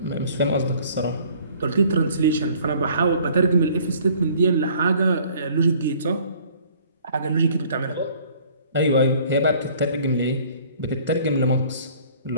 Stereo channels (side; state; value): both; inverted; correlation -0.55